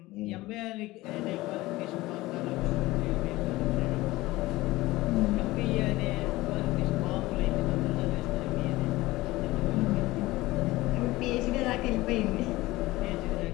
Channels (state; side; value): quieter; right; 18.9 dB